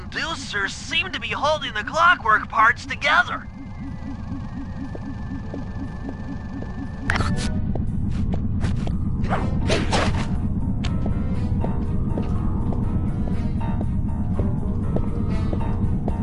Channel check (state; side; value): identical; both; correlation 1.00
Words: seem to be holding the clockwork parts together.